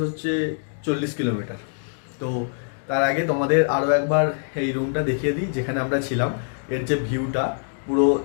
হচ্ছে 40 কিলোমিটার। তো তার আগে তোমাদের আরও একবার এই রুমটা দেখিয়ে দিই যেখানে আমরা ছিলাম। এর যে ভিউটা পুরো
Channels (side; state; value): right; silent; digital silence